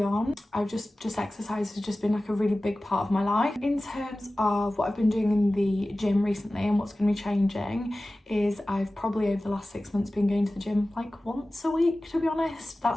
on, I've just exercise has just been like a really big part of my life. In terms of what I've been doing in the gym recently and what's going to be changing is I've probably over the last 6 months been going to the gym like once a week, to be honest.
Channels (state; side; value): normal; both; correlation 0.96